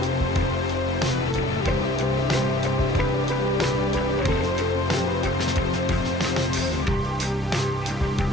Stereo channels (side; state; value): both; normal; correlation 0.52